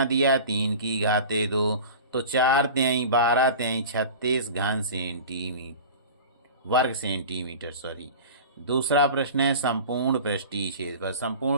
दिया? 3 की घाते 2, तो 4 तिहाई 12 तिहाई 36 घन सेंटीमीटर वर्ग सेंटीमीटर सॉरी। दूसरा प्रश्न है संपूर्ण पृष्ठीय क्षेत्रफल।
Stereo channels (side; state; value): both; inverted; correlation -0.36